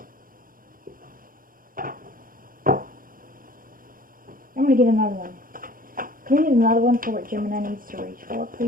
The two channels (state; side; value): late; left; 0.41 ms